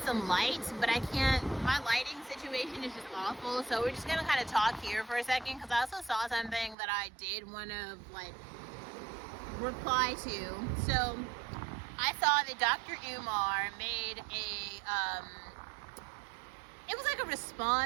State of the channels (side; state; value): left; drops out; at 6.8 s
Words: light, but I can't. My lighting situation is just awful. So we're just gonna kind of talk here for a second because I also saw something that I did want to like reply to. So I saw that Dr. Umar made it was like a